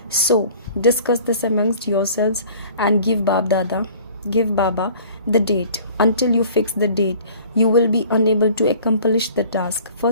So, discuss this amongst yourselves and give Baba the date. Until you fix the date, you will be unable to accomplish the task.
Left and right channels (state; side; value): inverted; both; correlation -0.49